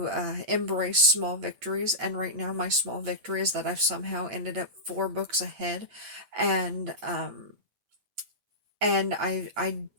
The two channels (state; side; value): late; left; 8.5 ms